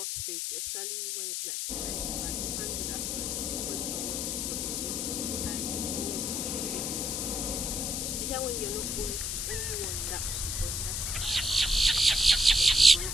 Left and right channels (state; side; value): noise; left; hiss, 1 dB below the sound